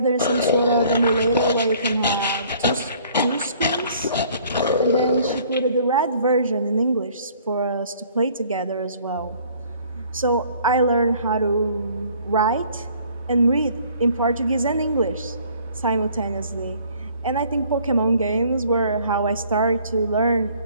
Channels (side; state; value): both; inverted; correlation -0.57